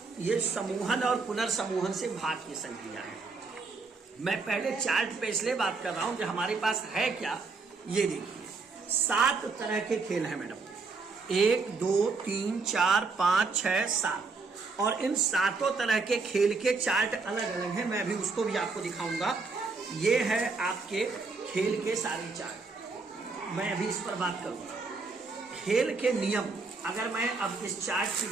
ये समूहन और पुनर्समूहन से भाग की संक्रिया है। मैं पहले चार्ट पे इसलिए बात कर रहा हूं कि हमारे पास है क्या, ये देखिए 7 तरह के खेल हैं मैडम, 1 2 3 4 5 6 7, और इन 7 तरह के खेल के चार्ट अलग अलग हैं। मैं भी उसको भी आपको दिखाऊंगा। ये है आपके खेल के सारे चार्ट, मैं अभी इस पर बात करूंगा। खेल के नियम, अगर मैं अब इस चार्ट की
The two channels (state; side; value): quieter; left; 4.2 dB